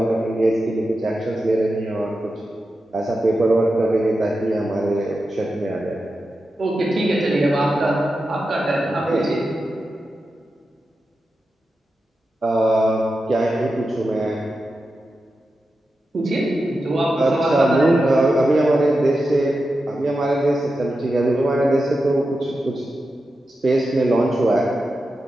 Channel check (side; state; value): both; normal; correlation 0.90